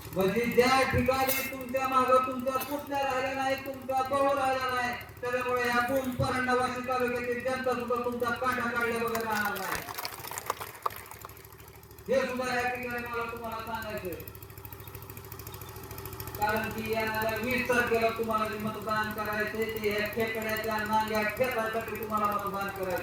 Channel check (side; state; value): both; identical; correlation 1.00